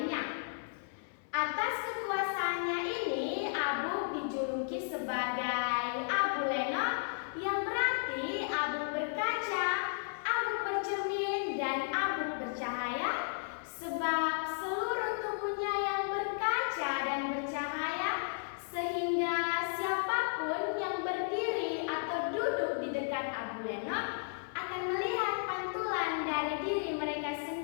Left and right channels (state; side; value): silent; right; 55 dB below the other